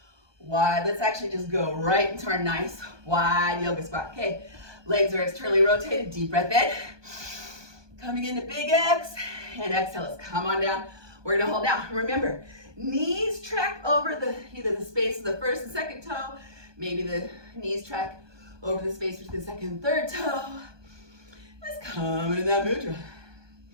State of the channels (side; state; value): left; late; 1.2 ms